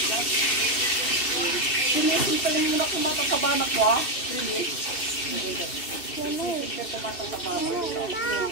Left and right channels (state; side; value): late; right; 2.7 ms